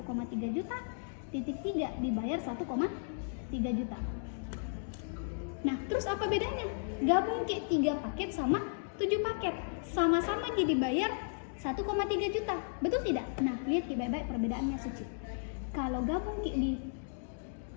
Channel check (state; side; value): silent; right; digital silence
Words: juta, titik 3 dibayar 1,3 juta. Nah, terus apa bedanya? Gabung 3 paket sama 7 paket, sama-sama jadi bayar 1,3 juta, betul tidak? Nah, lihat Ki baik-baik perbedaannya Suci. Kalau gabung Ki di